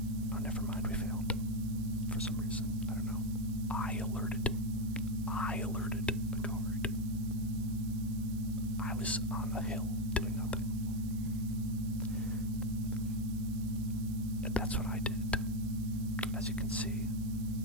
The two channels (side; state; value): right; noise; hiss, 18 dB below the sound